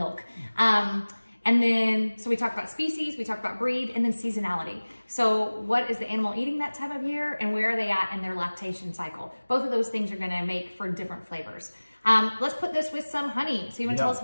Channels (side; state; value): both; inverted; correlation -1.00